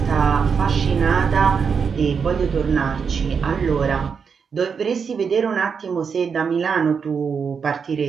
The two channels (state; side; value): quieter; left; 6.1 dB